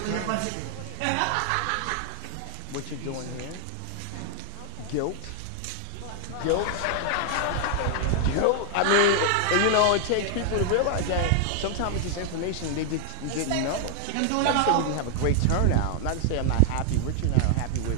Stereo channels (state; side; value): different; both; correlation 0.00